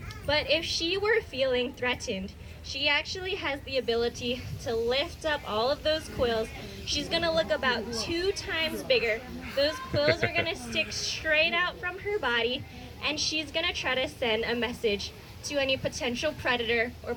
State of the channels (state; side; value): identical; both; correlation 1.00